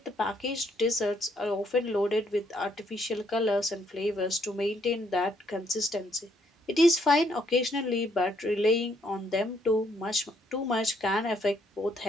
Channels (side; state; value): both; normal; correlation 0.71